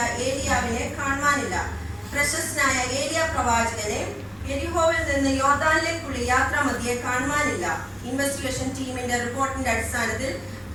ഏലിയാവിനെ കാണുവാനില്ല. പ്രശസ്തനായ ഏലിയ പ്രവാചകനെ എരിഹോവിൽ നിന്ന് യോർദാനിലേക്കുള്ള യാത്രാമധ്യേ കാണുവാനില്ല. ഇൻവെസ്റ്റിഗേഷൻ ടീമിന്റെ റിപ്പോർട്ടിന്റെ അടിസ്ഥാനത്തിൽ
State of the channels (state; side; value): identical; both; correlation 1.00